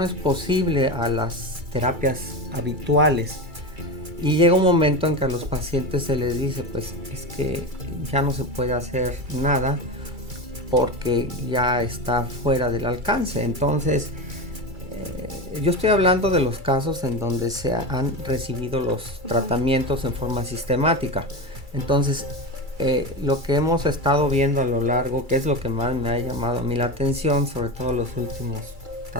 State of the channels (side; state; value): left; late; 2.3 ms